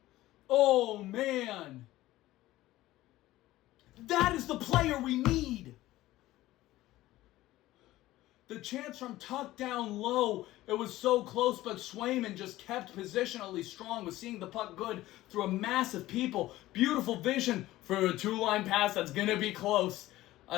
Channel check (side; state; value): right; quieter; 16.3 dB